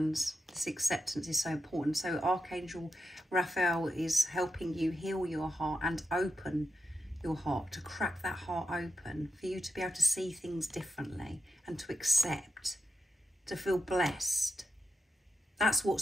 this acceptance is so important. So Archangel Raphael is helping you heal your heart and open your heart, to crack that heart open, for you to be able to see things differently and to accept, to feel blessed. That's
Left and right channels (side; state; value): both; normal; correlation 0.87